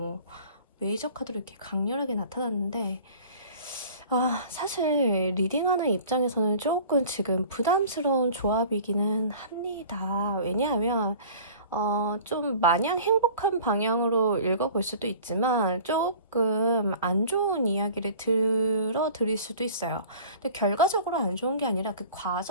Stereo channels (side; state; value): both; inverted; correlation -0.44